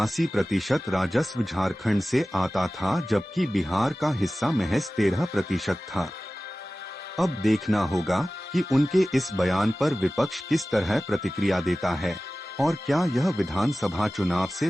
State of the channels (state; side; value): normal; both; correlation 0.96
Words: राजस्व झारखंड से आता था, जबकि बिहार का हिस्सा महज 13% था। अब देखना होगा कि उनके इस बयान पर विपक्ष किस तरह प्रतिक्रिया देता है और क्या यह विधानसभा चुनाव से